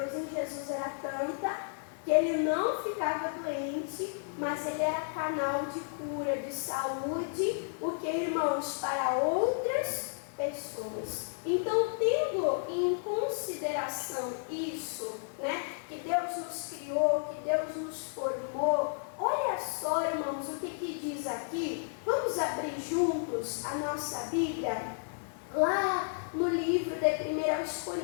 em Jesus era tanta que ele não ficava doente, mas ele era canal de cura, de saúde, porque, irmãos, para outras pessoas. Então, tendo em consideração isso, que Deus nos criou, que Deus nos formou, olha só, irmãos, o que diz aqui. Vamos abrir juntos a nossa Bíblia, lá no livro de 1 aos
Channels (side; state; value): right; silent; digital silence